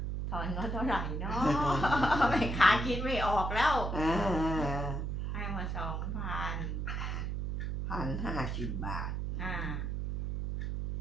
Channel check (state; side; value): noise; right; hum, 2 dB below the sound